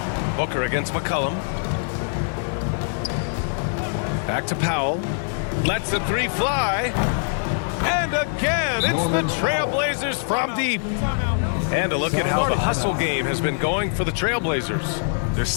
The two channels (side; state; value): right; silent; digital silence